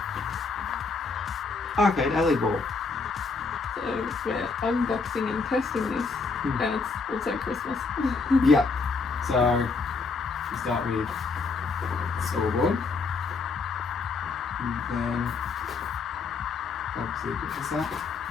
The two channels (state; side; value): quieter; right; 4.4 dB